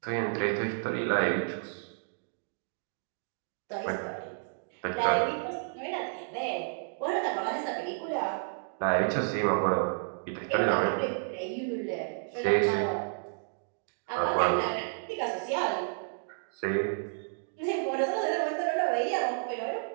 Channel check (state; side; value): silent; left; digital silence